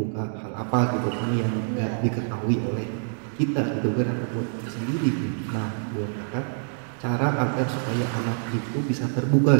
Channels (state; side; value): silent; left; 61 dB below the other